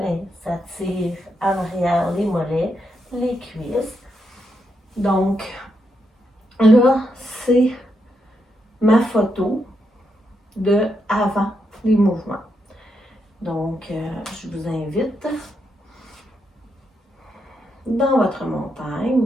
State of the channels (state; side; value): normal; both; correlation 0.81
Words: ça tire en arrière les mollets, les cuisses. Donc, là, c'est ma photo de avant les mouvements. Donc, je vous invite dans votre